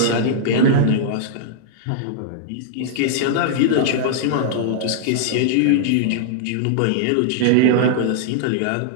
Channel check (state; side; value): different; both; correlation -0.01